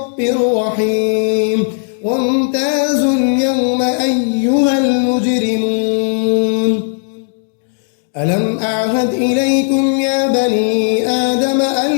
رحيم وامتازوا اليوم أيها المجرمون ألم أعهد إليكم يا بني آدم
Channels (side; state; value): right; silent; digital silence